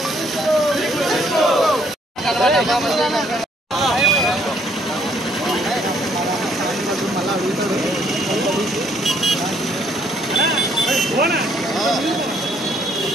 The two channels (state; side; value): normal; both; correlation 0.66